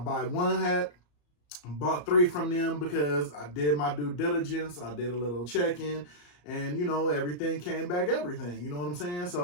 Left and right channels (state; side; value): late; right; 34 ms